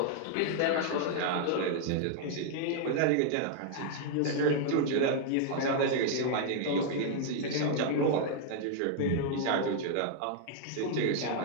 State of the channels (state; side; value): different; both; correlation 0.00